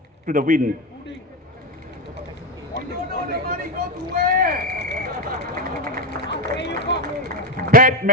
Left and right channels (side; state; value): both; normal; correlation 0.12